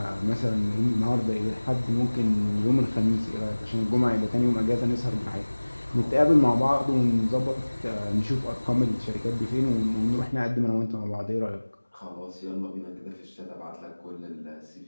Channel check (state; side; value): inverted; both; correlation -1.00